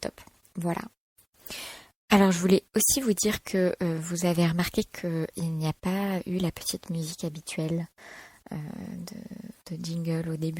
top. Voilà. Alors je voulais aussi vous dire que vous avez remarqué qu'il n'y a pas eu la petite musique habituelle de jingle au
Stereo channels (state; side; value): normal; both; correlation 0.95